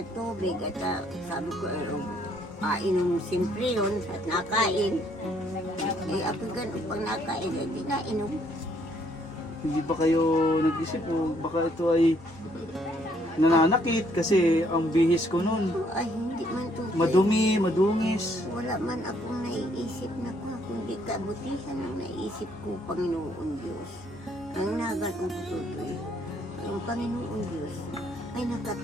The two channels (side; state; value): both; normal; correlation 0.67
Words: tubig at sabi ko, inom siyempre yun at nakain. Ako ganun pag nakain, hindi nainom. Hindi ba kayo nag-isip o baka ito ay nananakit kasi ang bihis ko noon Ay, hindi man to. madumi, madungis. Wala man akong naiisip na kundi kabutihan ang naiisip ko, Panginoon Diyos. Ang naganong ko tutoy, ang Panginoon Diyos ay